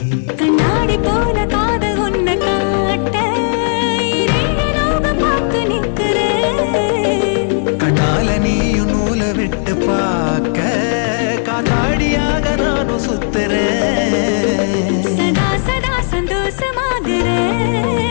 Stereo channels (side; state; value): right; silent; digital silence